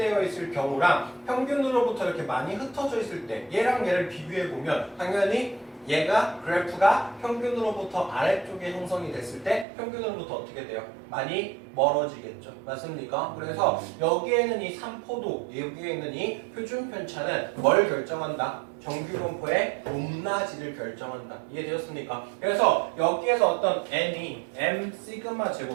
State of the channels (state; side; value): drops out; left; at 9.7 s